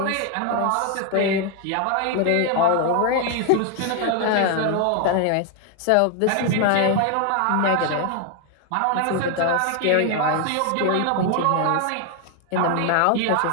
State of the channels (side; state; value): both; different; correlation 0.01